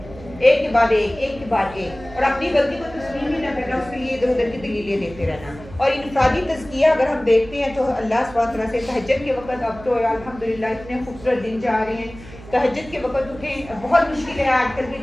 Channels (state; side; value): noise; right; hum, 17 dB below the sound